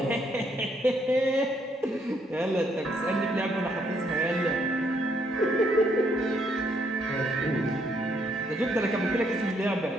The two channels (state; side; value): normal; both; correlation 0.71